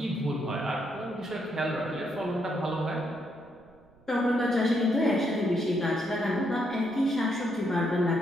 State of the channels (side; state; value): right; noise; rumble, 29 dB below the sound